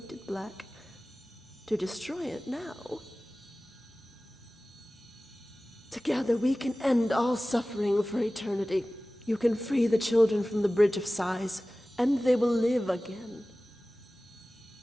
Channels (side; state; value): both; normal; correlation 0.97